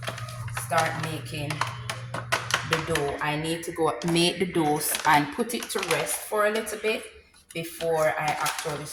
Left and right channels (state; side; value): identical; both; correlation 1.00